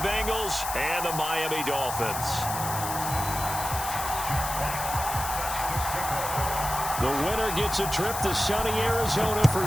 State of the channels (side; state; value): left; noise; hiss, 6 dB below the sound